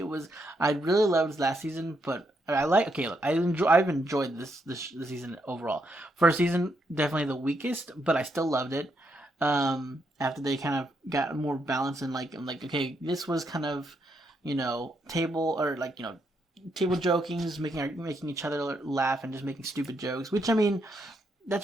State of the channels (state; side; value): normal; both; correlation 0.78